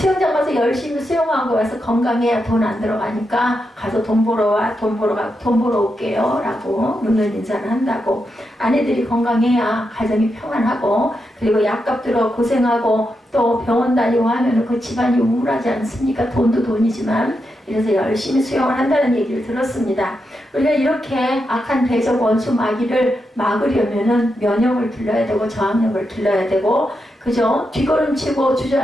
가서 열심히 수영하고 와서 건강해야 돈 안 들어가니까 가서 돈 벌어 와 돈 벌어 올게요 라고 웃는 인사를 한다고 아내들이 건강해야 가정이 평안하고 그리고 약값 들어 고생하고 또 병원 다니고 하면 그 집안이 우울하지 않습니까? 돈도 돈이지만 그래서 열심히 수영을 한다는 얘기를 들었습니다. 우리가 이렇게 악한 대적 원수 마귀를 막으려면은 면역을 길러야 되고 저항력을 길러야 되고 그죠? 뒷걸음치고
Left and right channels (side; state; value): both; normal; correlation 0.85